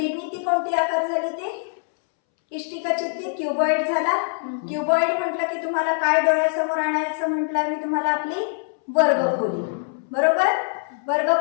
कोणती आकार झाली ते, इष्टिका चित्ती, क्युबॉइड झाला. क्युबॉइड म्हटलं की तुम्हाला काय डोळ्यासमोर आणायचं म्हटलं मी तुम्हाला, आपली वर्गखोली, बरोबर.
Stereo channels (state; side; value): silent; right; 63 dB below the other